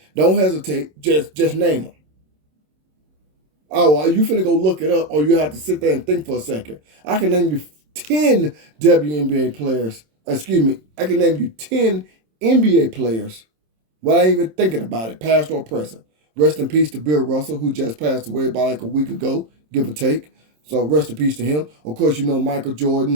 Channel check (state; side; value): late; left; 27 ms